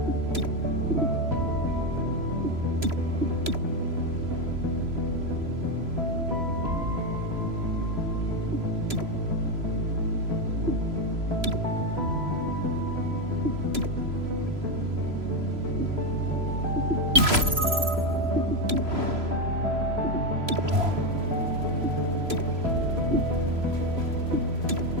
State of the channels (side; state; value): left; late; 3.0 ms